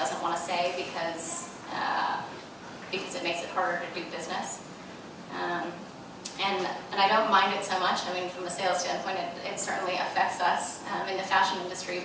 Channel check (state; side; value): identical; both; correlation 1.00